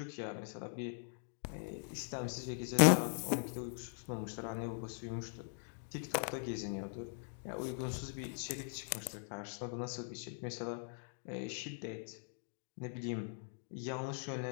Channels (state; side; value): silent; right; digital silence